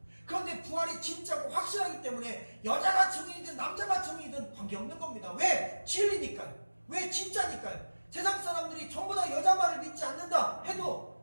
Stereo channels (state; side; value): inverted; both; correlation -1.00